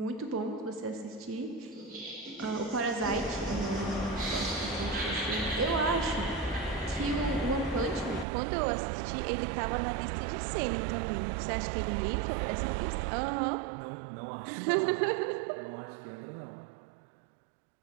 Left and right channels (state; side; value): drops out; left; at 8.2 s